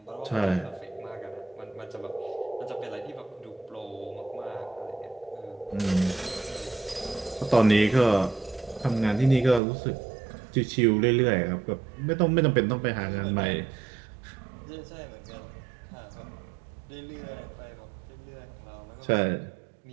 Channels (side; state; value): left; drops out; at 9.6 s